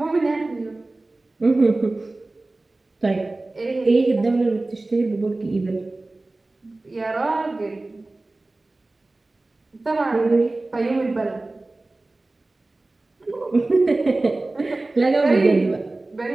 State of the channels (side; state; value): left; quieter; 3.0 dB